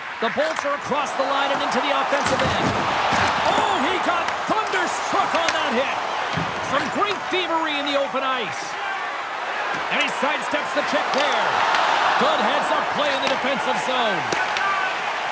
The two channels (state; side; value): identical; both; correlation 1.00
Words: The Bolts are across the line and into the offensive end. Oh, he got thunderstruck on that hit. Some great thievery in the open ice. And he sidesteps the check there. Good heads-up play in the defensive zone.